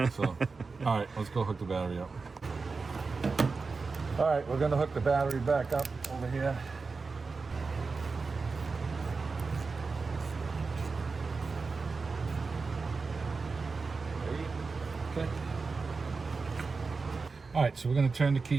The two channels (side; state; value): left; quieter; 4.4 dB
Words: So, all right, let's go hook the battery up. All right, we're going to hook the battery back up over here. Okay. All right, so we're going to turn the